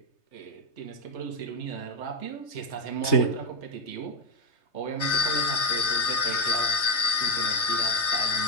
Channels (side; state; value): right; late; 3.3 ms